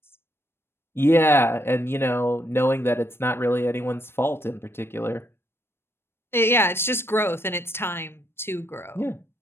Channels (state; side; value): late; right; 0.12 ms